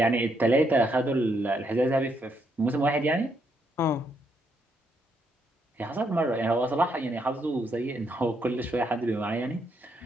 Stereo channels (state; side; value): normal; both; correlation 0.76